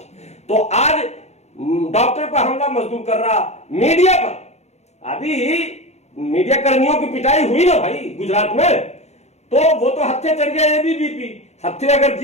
तो आज डॉक्टर पर हमला मजदूर कर रहा, मीडिया पर अभी मीडिया कर्मियों की पिटाई हुई ना भाई गुजरात में, तो वो तो हत्थे चढ़ गया एबीवीपी, हत्थे अगर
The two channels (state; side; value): late; right; 0.32 ms